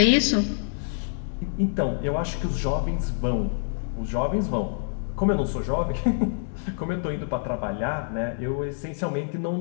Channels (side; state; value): right; silent; 61 dB below the other